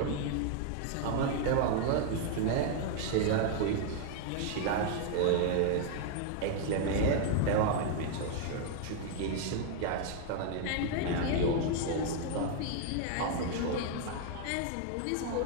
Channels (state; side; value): different; both; correlation 0.00